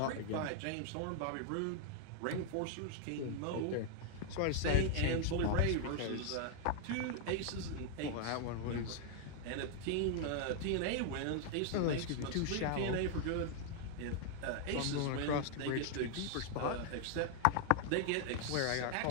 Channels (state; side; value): different; both; correlation 0.00